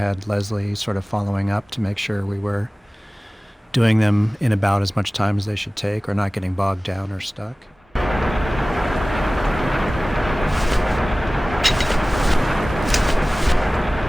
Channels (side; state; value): both; normal; correlation 0.98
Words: Leslie sort of following up to make sure we were doing them in about as much time as they should take, or not getting bogged down or stuck.